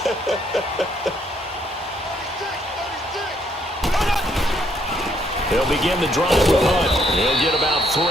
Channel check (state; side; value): normal; both; correlation 0.69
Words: He'll begin the drive with Hunt. He'll get about